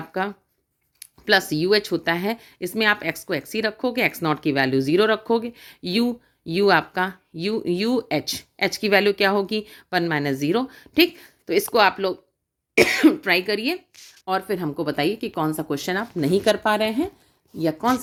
प्लस यू एच होता है। इसमें आप x को x ही रखोगे, एक्स नॉट की वैल्यू 0 रखोगे, u आपका यू एच की वैल्यू क्या होगी, 1 माइनस 0। ठीक, तो इसको आप लोग ट्राई करिए और फिर हमको बताइए कि कौन सा क्वेश्चन आप नहीं कर पा रहे हैं या कौन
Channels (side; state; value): both; identical; correlation 1.00